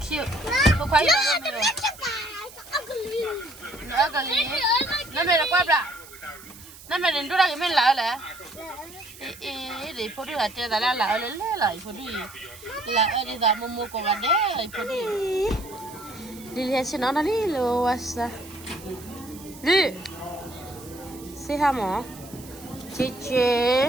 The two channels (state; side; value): noise; right; hiss, 18 dB below the sound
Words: Cô khoái rồi mẹ rồi. Nó ugly. Nó mẹ là quá bra. Nó mẹ đến đó cái mẹ lại là. Để phụ nữ ở trên là lại lại phụ nữ. Là ở đây là mua con gà đấy phụ nữ. Đi lihat sini nó đi luas. Đi. Say hi mom.